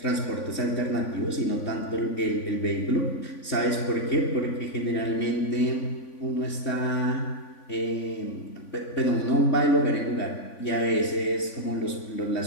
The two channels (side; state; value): right; late; 3.5 ms